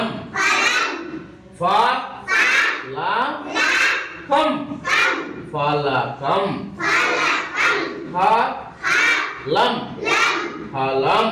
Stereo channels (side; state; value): both; identical; correlation 1.00